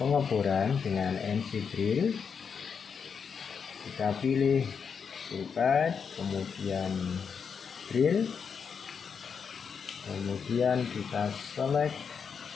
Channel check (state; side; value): quieter; right; 6.4 dB